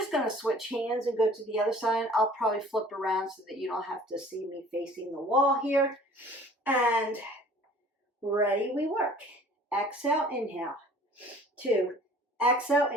going to switch hands and go to the other side. I'll probably flip around so that you don't have to see me facing the wall here. And ready, we work. Exhale, inhale. 2, exhale,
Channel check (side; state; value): both; normal; correlation 0.50